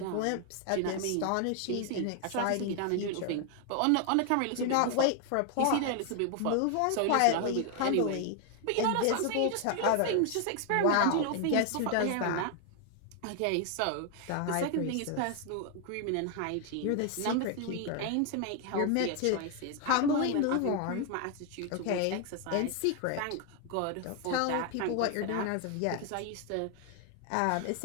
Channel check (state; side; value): different; both; correlation 0.00